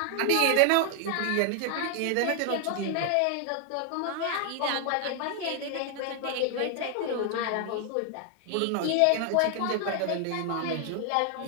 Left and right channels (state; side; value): different; both; correlation 0.00